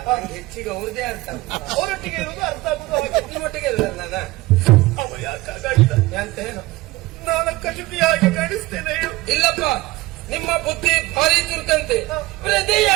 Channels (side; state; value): left; quieter; 19.8 dB